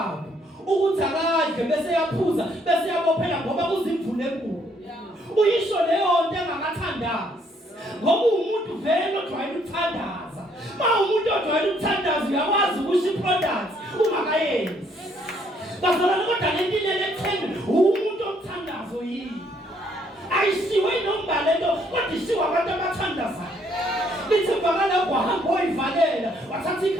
ukuthi akadle bese yaphuza bese yabophela ngoba kuzimvule enkulu. Uyisho leyo nto engakathandazi. Ngoba umuntu vele ojwayele ukuthandaza. Ma umuntu ojwayele ukuthandaza uyakwazi ukusho iproduct ungakayenzi. Bazalwane kodwa lento ilele ekutheni umuntu omthandazo yini. Ayishiwe nombala lento kodwa ishiwe abantu abathandazayo. Lithi bakala kwahamba oyivalela wathatha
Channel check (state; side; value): normal; both; correlation 0.68